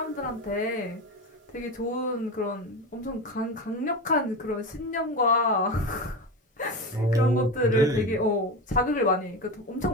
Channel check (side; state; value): both; normal; correlation 0.22